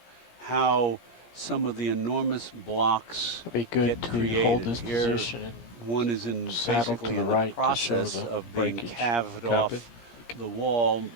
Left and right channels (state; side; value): late; right; 17 ms